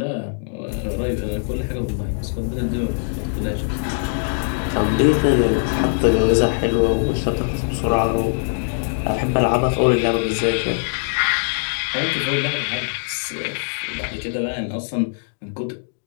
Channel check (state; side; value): silent; right; digital silence